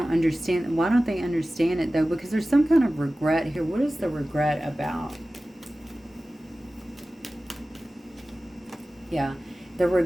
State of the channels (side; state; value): both; normal; correlation 0.96